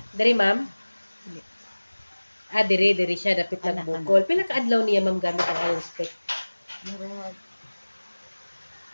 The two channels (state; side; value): inverted; both; correlation -1.00